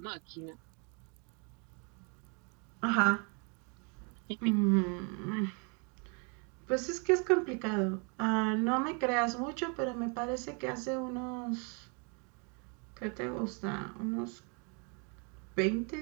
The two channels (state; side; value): quieter; left; 35.5 dB